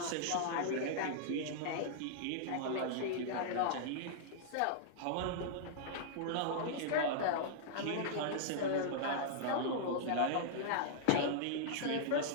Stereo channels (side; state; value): both; different; correlation -0.01